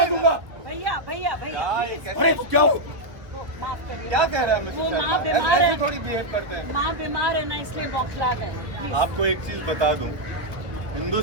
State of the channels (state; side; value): late; left; 1.3 ms